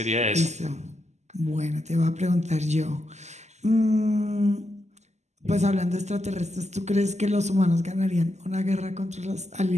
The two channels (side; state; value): left; late; 0.33 ms